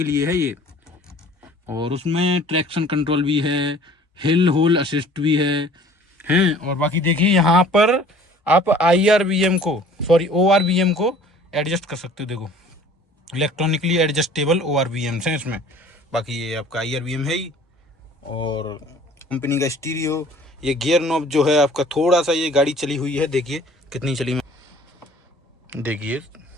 लिए है ये। और उसमें ट्रैक्शन कंट्रोल भी है, हिल होल असिस्ट भी है। और बाकी देखिए यहाँ पर आप ORVM को एडजस्ट कर सकते हो। देखो इलेक्ट्रॉनिकली एडजस्टेबल ORVMs हैं इसमें। बाकी ये आपका IRVM है ही, और कंपनी का स्टीरियो। ये गियर नॉब जो है आपका थोड़ा सा, ये गाड़ी चली हुई है, देखिए कितनी चली, देखिए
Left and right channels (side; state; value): both; normal; correlation 0.50